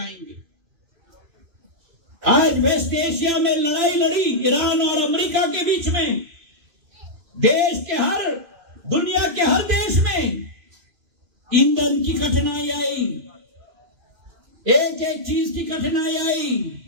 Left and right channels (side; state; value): left; late; 2.5 ms